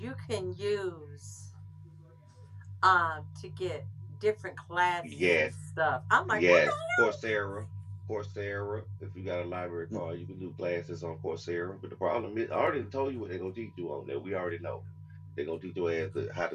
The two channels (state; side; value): identical; both; correlation 1.00